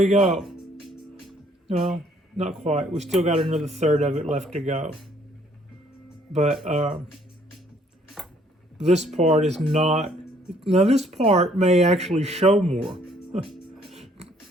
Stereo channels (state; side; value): normal; both; correlation 0.63